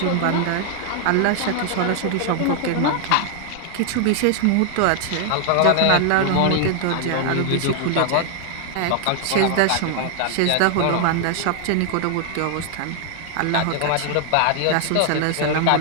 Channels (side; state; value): both; different; correlation 0.00